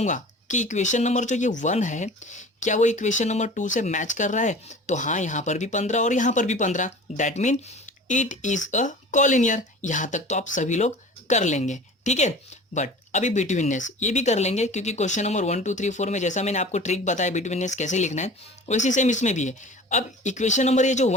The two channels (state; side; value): normal; both; correlation 0.40